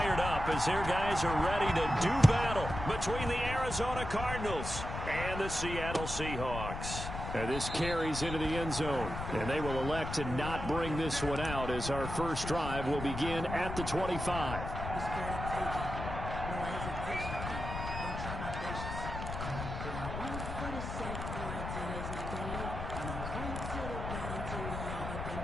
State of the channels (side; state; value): left; noise; rumble, 6 dB below the sound